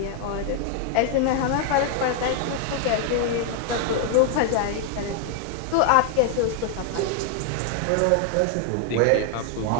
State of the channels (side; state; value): both; different; correlation 0.00